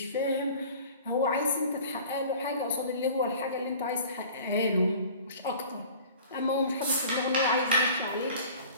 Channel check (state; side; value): inverted; both; correlation -0.44